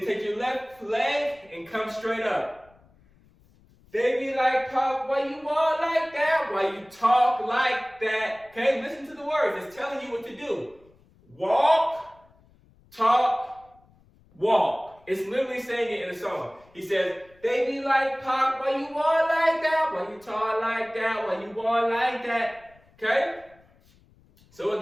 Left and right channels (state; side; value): noise; left; rumble, 30 dB below the sound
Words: take your left leg and come straight up. They be like pop while you walk like that, while you talk like that. Okay, listen to the words. It's telling you what to do. Walk, talk, walk. It's literally saying it in the song. He says, they be like pop while you walk like that, while you talk like that, while you walk like that. Okay? So